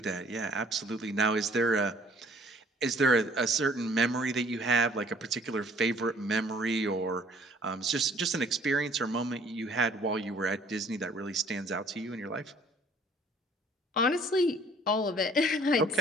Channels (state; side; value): normal; both; correlation 0.57